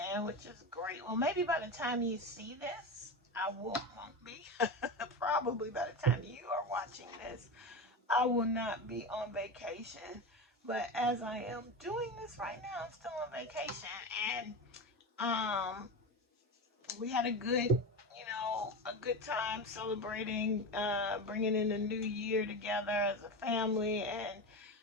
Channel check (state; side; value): normal; both; correlation 0.22